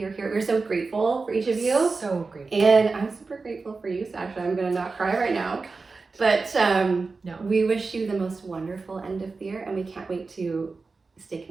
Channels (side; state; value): left; quieter; 4.1 dB